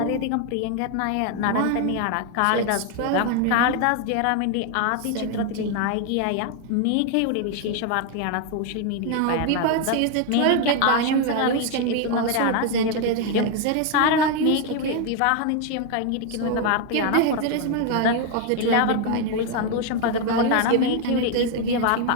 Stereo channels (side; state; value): both; different; correlation 0.01